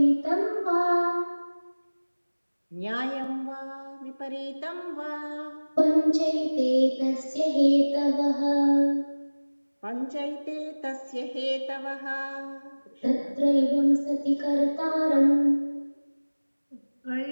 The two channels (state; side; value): inverted; both; correlation -1.00